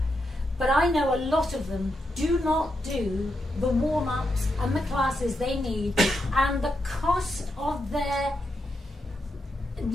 but I know a lot of them do not do the warm-ups and the classes they need, and the cost of their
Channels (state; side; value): normal; both; correlation 0.84